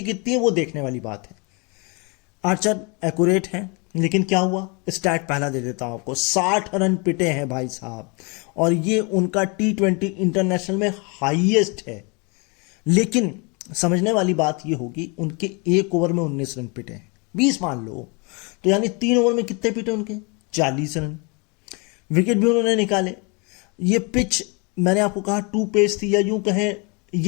कितनी है वो देखने वाली बात है। आर्चर एक्यूरेट है, लेकिन क्या हुआ, स्टैट पहला दे देता हूं आपको, 60 रन पिटे हैं भाई साहब, और ये उनका T20 इंटरनेशनल में हाईएस्ट है। लेकिन समझने वाली बात ये होगी, उनके एक ओवर में 19 रन पिटे हैं, 20 मान लो, तो यानी 3 ओवर में कितने पिटे उनके, 40 रन। विकेट भी उन्होंने निकाले। ये पिच मैंने आपको कहा 2 पेस थी, या यूं कहें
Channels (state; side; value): quieter; right; 31.4 dB